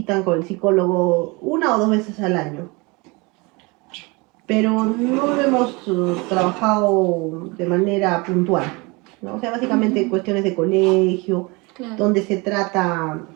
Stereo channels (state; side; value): quieter; left; 26.6 dB